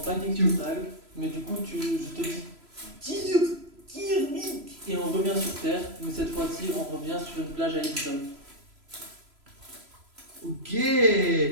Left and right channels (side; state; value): left; late; 3.0 ms